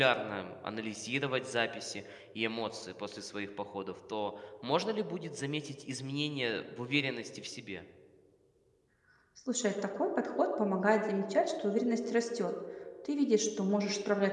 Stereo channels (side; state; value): both; identical; correlation 1.00